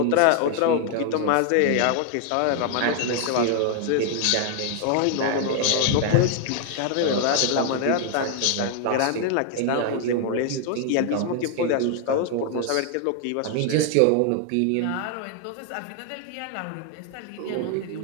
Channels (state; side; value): different; both; correlation 0.00